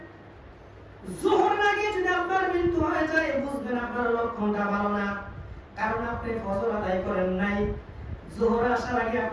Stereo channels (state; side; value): identical; both; correlation 1.00